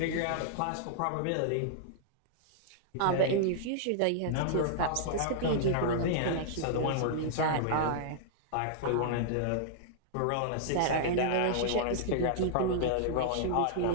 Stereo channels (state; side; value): different; both; correlation -0.01